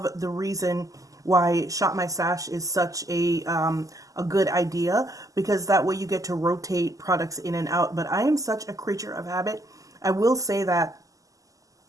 the reason why Shop My Stash is such a good idea, because that way you get to rotate products in and out. But I am such a creature of habit. I will say that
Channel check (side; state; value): left; late; 0.17 ms